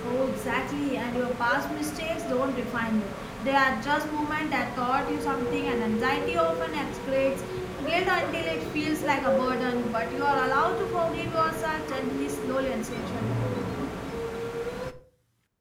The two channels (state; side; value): identical; both; correlation 1.00